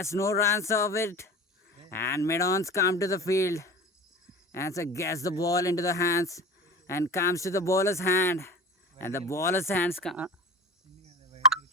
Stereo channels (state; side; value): normal; both; correlation 0.35